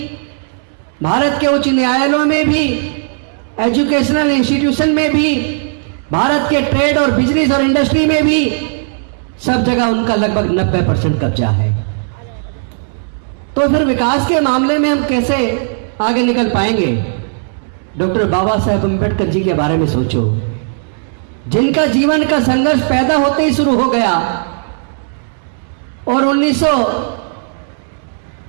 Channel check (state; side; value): silent; left; digital silence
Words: भारत के उच्च न्यायालयों में भी, एजुकेशनल इंस्टीट्यूशन में भी, भारत के ट्रेड और बिजनेस और इंडस्ट्री में भी, सब जगह उनका लगभग 90% कब्जा है। तो फिर विकास के मामले में हम कैसे आगे निकल पाएंगे? डॉक्टर बाबा साहेब अम्बेडकर जी के बारे में सोचो, जिनका जीवन का संघर्ष पैदा होते ही शुरू हो गया, और